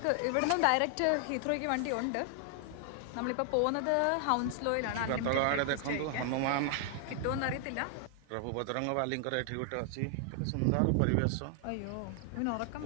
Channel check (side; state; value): both; different; correlation 0.00